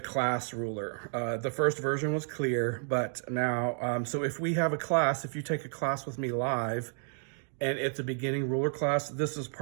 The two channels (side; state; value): left; silent; 57 dB below the other